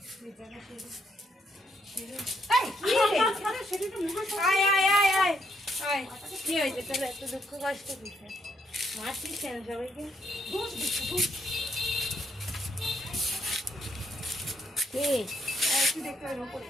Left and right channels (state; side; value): normal; both; correlation 0.74